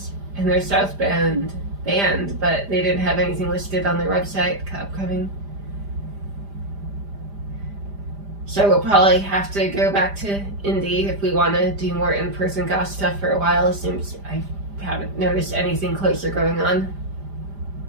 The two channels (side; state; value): left; late; 5.0 ms